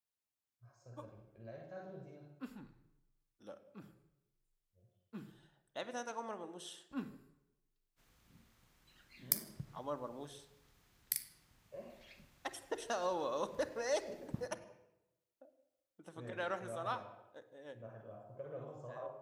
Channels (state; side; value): identical; both; correlation 1.00